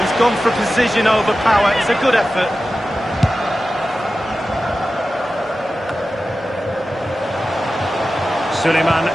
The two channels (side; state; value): both; normal; correlation 0.94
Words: gone for precision over power. It's a good effort. Suleiman